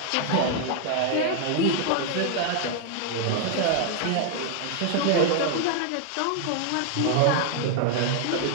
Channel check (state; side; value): different; both; correlation 0.00